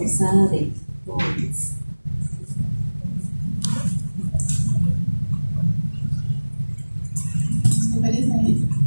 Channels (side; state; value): both; inverted; correlation -1.00